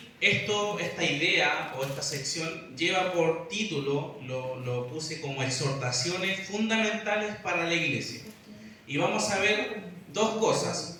esta idea o esta sección lleva por título, lo puse como exhortaciones fundamentales para la iglesia. Y vamos a ver 2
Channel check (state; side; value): identical; both; correlation 1.00